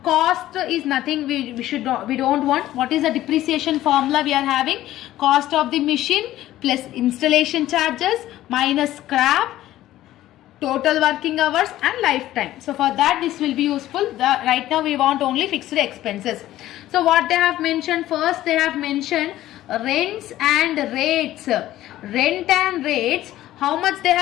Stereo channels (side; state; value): right; quieter; 14.3 dB